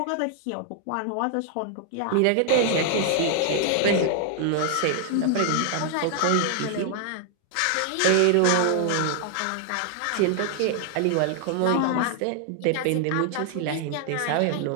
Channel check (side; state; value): both; different; correlation 0.00